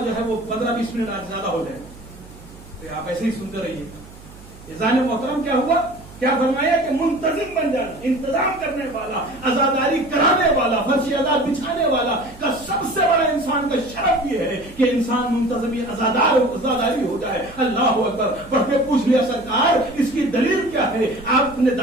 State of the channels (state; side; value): noise; right; hum, 20 dB below the sound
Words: جو ہے وہ 15-20 منٹ آج زیادہ ہو جائے گا. تو آپ ایسے ہی سنتے رہیے. اذان محترم کیا ہوا؟ کیا فرمایا کہ منتظم بن جانا، انتظام کرنے والا، عزاداری کرانے والا، فرش عزاد بچھانے والا کا سب سے بڑا انسان کا شرف یہ ہے کہ انسان منتظم عزاداری ہو جائے. اللہ اکبر. پڑھ کے پوچھ لیا سرکار اس کی دلیل کیا ہے؟ آپ نے